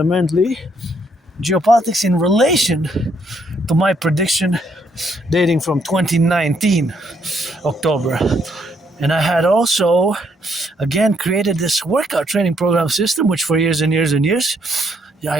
geopolitics in relation to my prediction dating from 2019 October. And I had also again created this workout training program system, which for years and years and years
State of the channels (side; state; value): both; normal; correlation 0.72